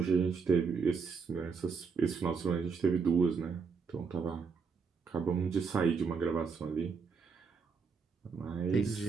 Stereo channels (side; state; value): left; quieter; 5.4 dB